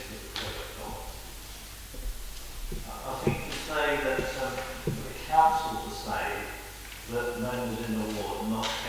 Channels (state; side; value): identical; both; correlation 1.00